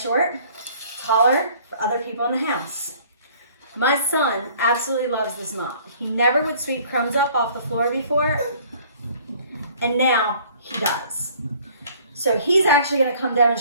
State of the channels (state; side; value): inverted; both; correlation -0.55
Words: taller, for other people in the house. My son absolutely loves this mop. He never would sweep crumbs up off the floor before, and now he does. So he's actually going to come